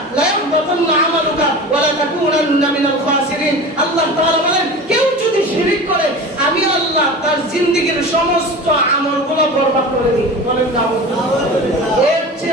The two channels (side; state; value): both; normal; correlation 0.33